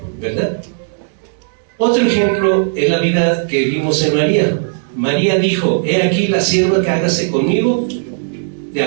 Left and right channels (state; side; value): silent; left; digital silence